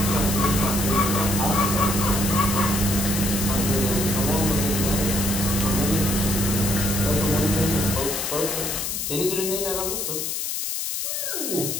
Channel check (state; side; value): noise; left; hiss, 2 dB below the sound